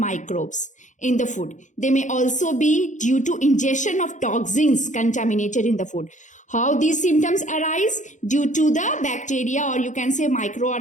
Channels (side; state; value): right; late; 0.36 ms